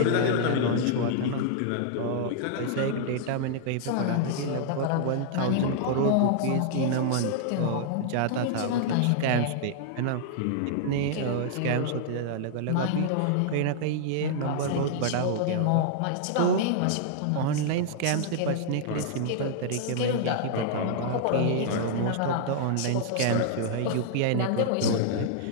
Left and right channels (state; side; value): different; both; correlation -0.01